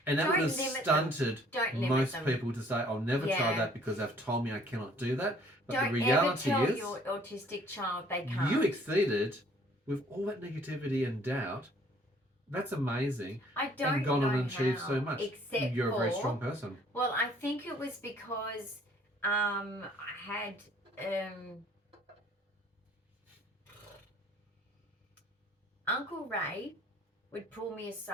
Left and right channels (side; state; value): both; normal; correlation 0.58